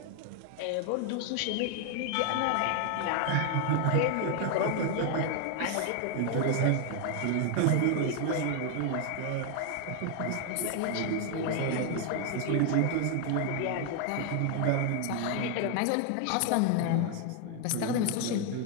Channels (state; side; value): different; both; correlation 0.00